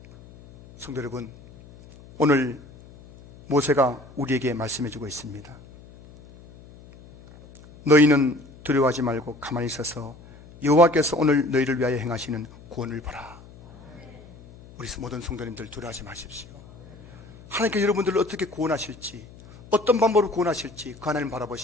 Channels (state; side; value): noise; left; hum, 21 dB below the sound